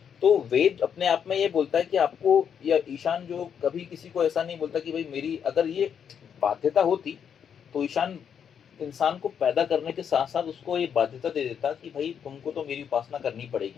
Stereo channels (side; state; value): right; quieter; 7.8 dB